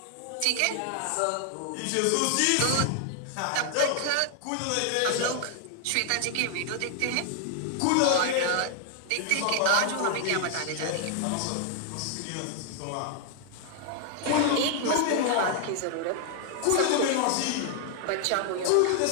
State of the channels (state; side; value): different; both; correlation 0.00